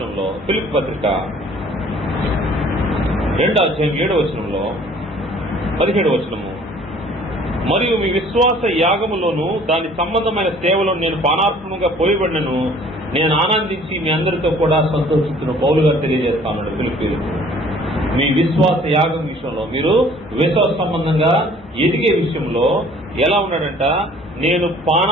ఫిలిప్పీ పత్రిక 2వ అధ్యాయం 7వ వచనంలో 17వ వచనము, మరియు మీ విశ్వాస యాగములోను దాని సంబంధమైన సేవలో నేను పానార్పణంగా పోయబడినను నేను ఆనందించి మీ అందరితో కూడా సంతోషిస్తున్న పౌలు గారు తెలియజేస్తాను. ఫిలిప్పీలకు మీ విశ్వాస యాగం విషయంలో, మీరు విశ్వాస సంబంధంగా ఎదిగే విషయంలో ఎలా ఉన్నాడంట, నేను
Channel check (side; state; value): both; normal; correlation 0.54